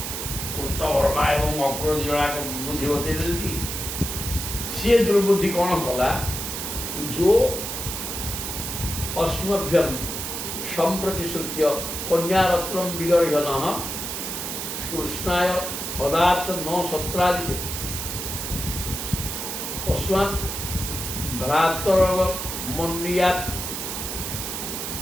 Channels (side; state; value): right; noise; hiss, 4 dB below the sound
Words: କୃତବର୍ମା ଏବଂ ଅକ୍ରୁର 2 ଜଣ ବୁଦ୍ଧି ବତେଇ ଦେନ୍ତି। ସିଏ ଦୁର୍ବୁଦ୍ଧି କ'ଣ କଲା, ଯୋ ଅସ୍ମଭ୍ୟମ୍ ସମ୍ପ୍ରତିଶ୍ରୁତ୍ୟ କନ୍ୟାରତ୍ନଂ ବିଗର୍ହ୍ୟନଃ କୃଷ୍ଣାୟ ପଦାର୍ଥ ନ ସତ୍ରାଜିତ ତସ୍ମାତ୍ ଭ୍ରାତରବ ମନ୍ୟାତ୍।